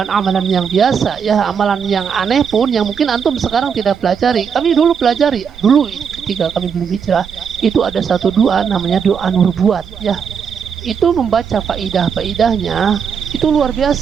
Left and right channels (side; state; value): left; quieter; 6.8 dB